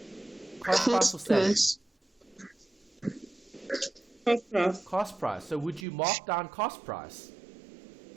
Cost price or selling? Cost price. Cost price. So would you mark down cost price?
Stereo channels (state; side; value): drops out; left; at 5.9 s